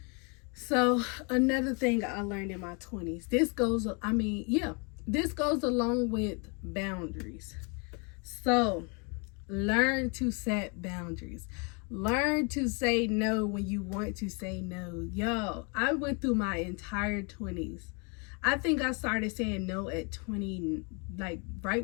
So another thing I learned in my 20s, this goes along with boundaries. So learn to set boundaries. Learn to say no when you want to say no. Yo, I went through my entire 20s. I think I started saying no at 20, like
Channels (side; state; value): right; quieter; 34.1 dB